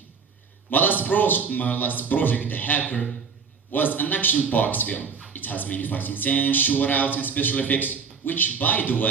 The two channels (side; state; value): left; quieter; 5.8 dB